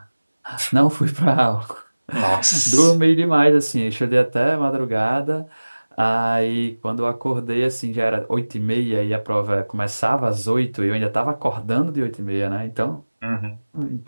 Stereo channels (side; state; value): both; inverted; correlation -1.00